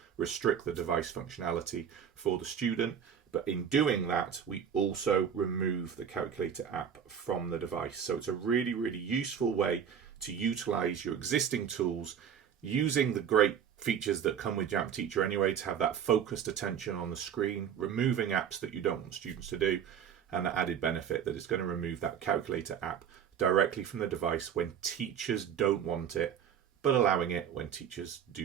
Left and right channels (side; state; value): left; quieter; 8.2 dB